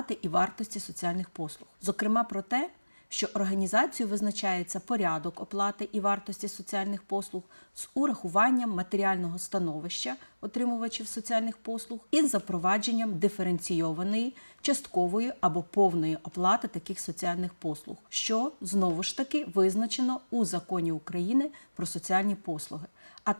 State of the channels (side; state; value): both; inverted; correlation -1.00